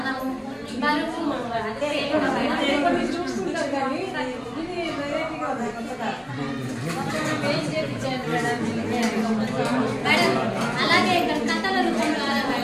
బరువు చూస్తుంటారు కానీ ఇది వెరైటీగా ఉంది. మేడం అలాగే ఇక్కడ కథల రూపం ద్వారా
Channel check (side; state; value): both; identical; correlation 1.00